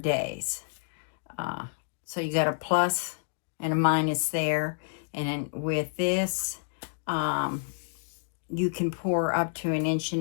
So you got a plus and a minus there. And then with this, you can pour up to 1.5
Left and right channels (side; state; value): right; silent; digital silence